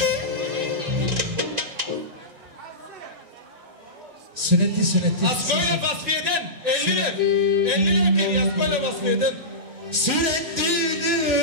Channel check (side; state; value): left; late; 2.7 ms